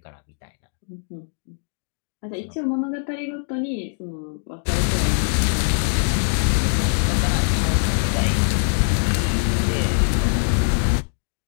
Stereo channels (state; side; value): silent; right; digital silence